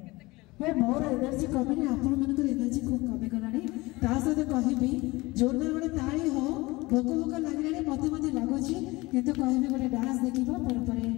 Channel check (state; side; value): quieter; right; 21.9 dB